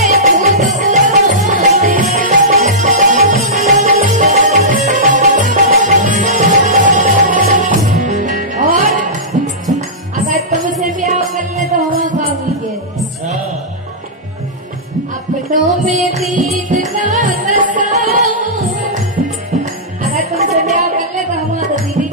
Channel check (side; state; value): both; normal; correlation -0.16